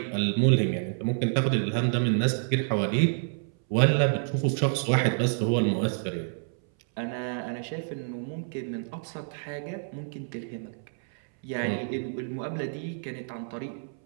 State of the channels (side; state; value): left; silent; 59 dB below the other